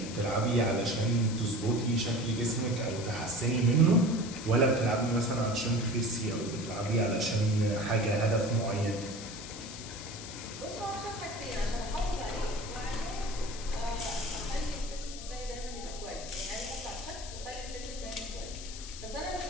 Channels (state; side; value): noise; left; hiss, 11 dB below the sound